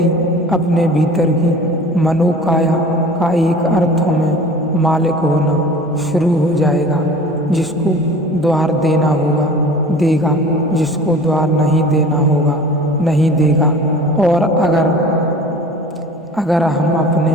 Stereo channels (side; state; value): both; normal; correlation 0.42